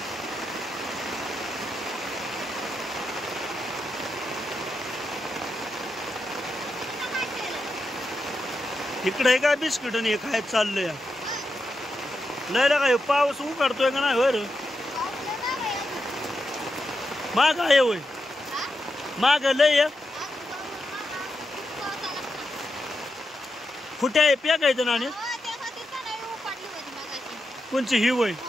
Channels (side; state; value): both; normal; correlation 0.87